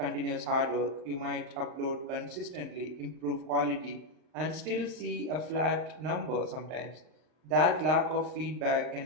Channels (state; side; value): late; left; 39 ms